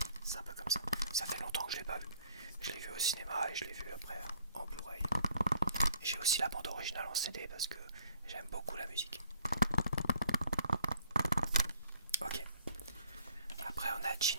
C'est un peu comme ça. Ça fait longtemps que je l'ai pas vu. Je l'ai vu au cinéma et je l'ai vu après en Blu-ray. J'ai aussi la bande originale en CD parce que j'aime beaucoup la musique. Ok. Après on a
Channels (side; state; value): both; inverted; correlation -0.61